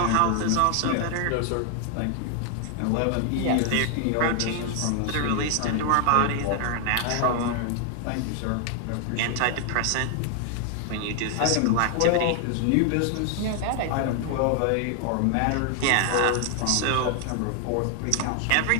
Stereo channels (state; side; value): different; both; correlation 0.00